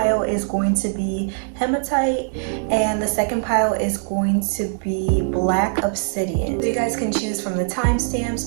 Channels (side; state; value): left; silent; digital silence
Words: is going to be hematite and the second pile is going to be black obsidian. So you guys can choose from the